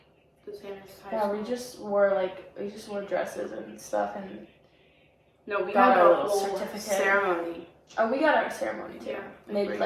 the same as high school. we just wore dresses and stuff, and No, we got had our a little whole certificate. ceremony. oh, we got our ceremony too. Yeah. Made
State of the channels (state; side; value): identical; both; correlation 1.00